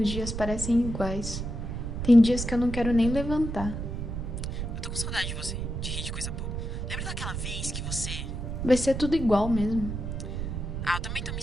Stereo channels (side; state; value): right; noise; rumble, 4 dB below the sound